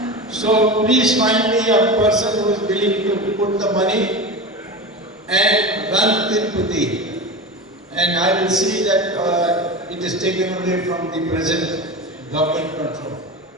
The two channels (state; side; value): normal; both; correlation 0.26